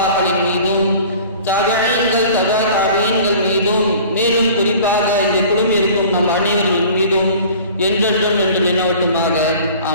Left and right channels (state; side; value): inverted; both; correlation -0.45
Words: மீதும், தபீஈன்கள் தபா தபீஈன்கள் மீதும், மேலும் குறிப்பாக இங்கு குழுமியிருக்கும் நம் அனைவரின் மீதும் என்றென்றும் என்று நினைவட்டுமாக.